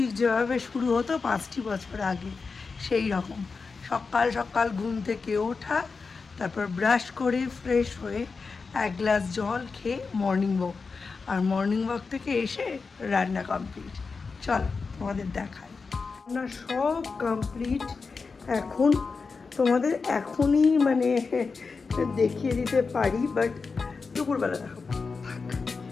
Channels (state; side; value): quieter; right; 4.6 dB